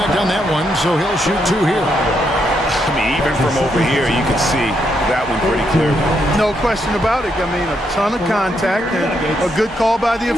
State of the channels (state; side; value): normal; both; correlation 0.78